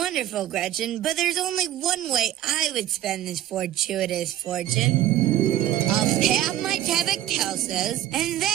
Gretchen, but there's only one way I would spend this fortuitous fortune. I'll pay off my tab at Kelso's, and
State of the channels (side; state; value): left; quieter; 12.7 dB